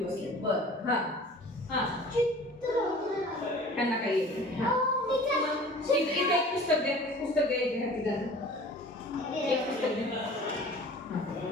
बसले. बरं. त्यांना काही येत इथे एक पुस्तक द्या. पुस्तक द्यायचे हाती त्यांना. एक पुस्तक द्या.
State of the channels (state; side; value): normal; both; correlation 0.44